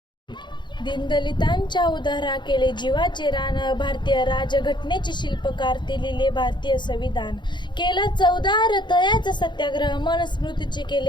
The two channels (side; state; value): right; late; 0.22 ms